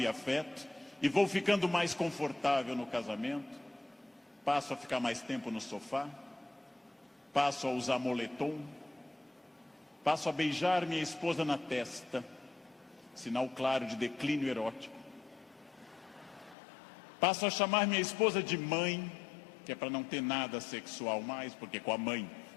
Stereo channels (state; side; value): drops out; right; at 16.6 s